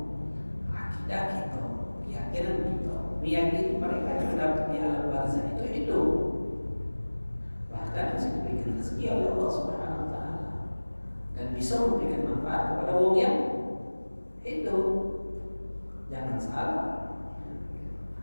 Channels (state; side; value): inverted; both; correlation -1.00